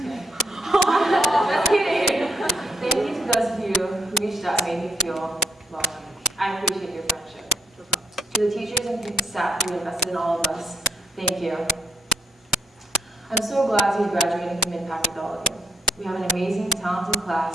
Just kidding. Thank you to those of you who reached out and made me feel welcome. I appreciate your friendship. To the teachers and staff who invested in all of us, thank you. I'm so glad to be graduating from Mid-Pac with all of you. We have an amazing, talented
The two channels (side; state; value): both; normal; correlation 0.73